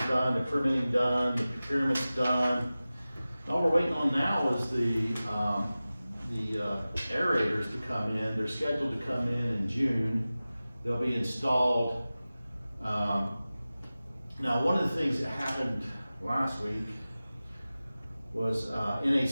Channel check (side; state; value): both; inverted; correlation -0.96